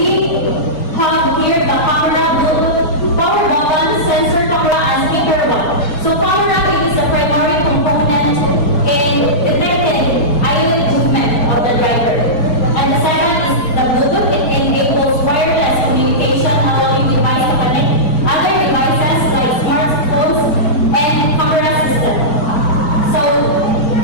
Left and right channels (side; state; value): right; late; 6.6 ms